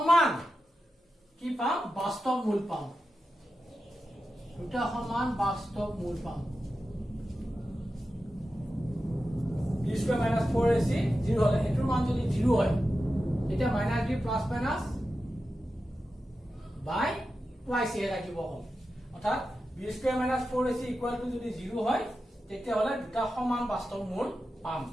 কি পাম বাস্তৱ মূল পাম দুটা সমান বাস্তৱ মূল পাম স্কোয়াৰ মাইনাস 4ac 0 হলে এটোৰ মান যদি 0 হয় তেতিয়া মাইনাস b প্লাস মাইনাস বাই টুৱাইস এ ৰাখিব হ'ল অৰ্থাৎ b square minus 4ac equal to যদি 0 হয় তেতিয়া হলে দুটা সমান বাস্তৱ মূল পাম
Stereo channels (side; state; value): both; normal; correlation 0.91